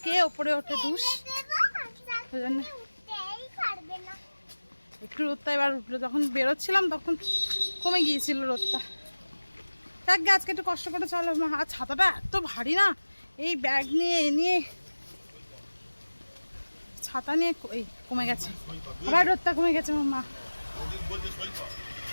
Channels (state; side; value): inverted; both; correlation -1.00